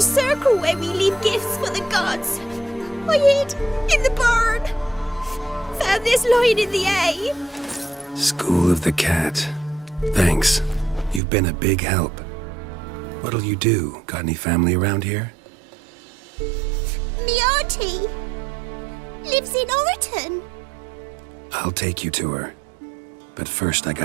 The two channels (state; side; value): drops out; left; at 11.2 s